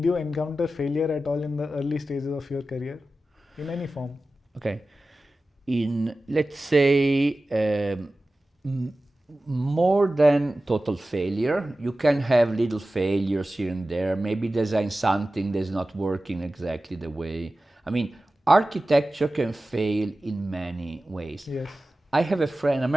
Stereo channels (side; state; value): both; normal; correlation 0.95